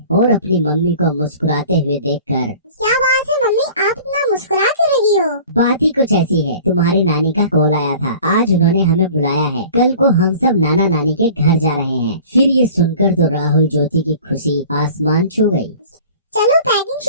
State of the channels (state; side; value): inverted; both; correlation -0.45